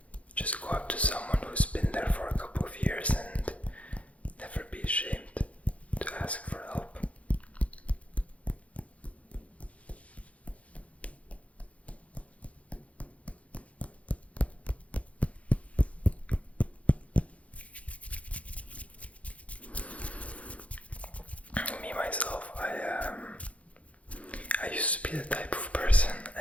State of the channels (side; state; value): right; late; 0.065 ms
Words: go up to someone who's been there for a couple of years, and never be ashamed to ask for help. Me myself, I used to be the type of person,